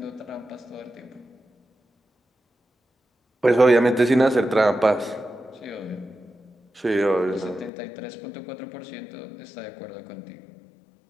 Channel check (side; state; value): right; drops out; at 7.7 s